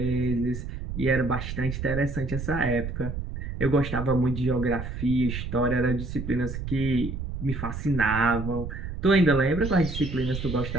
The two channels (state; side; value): noise; right; rumble, 6 dB below the sound